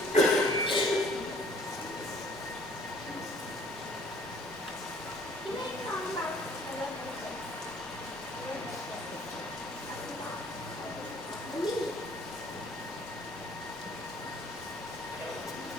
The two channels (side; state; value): both; normal; correlation 0.56